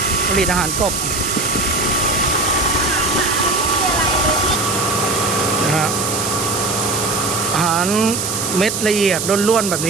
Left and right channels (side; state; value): right; noise; hiss, 3 dB below the sound